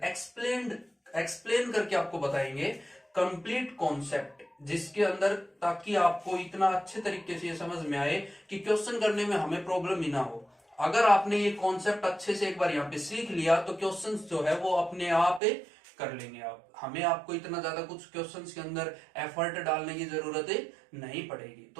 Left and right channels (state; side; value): drops out; left; at 15.4 s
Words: एक्सप्लेन करके आपको बताएंगे कंप्लीट कॉन्सेप्ट, जिसके अंदर ताकि आपको इतना अच्छे तरीके से ये समझ में आए कि क्वेश्चन करने में हमें प्रॉब्लम ही ना हो। अगर आपने ये कॉन्सेप्ट अच्छे से एक बार यहाँ पे सीख लिया तो क्वेश्चंस जो है वो अपने आप कर लेंगे आप। हमें आपको इतना ज्यादा कुछ क्वेश्चंस के अंदर एफर्ट डालने की जरूरत नहीं पड़ेगी।